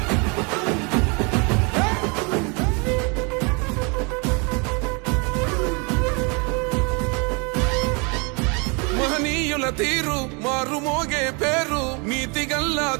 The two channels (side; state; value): left; quieter; 31.9 dB